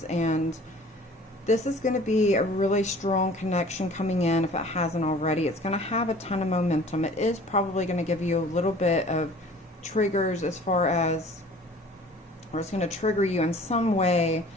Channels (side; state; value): both; normal; correlation 0.48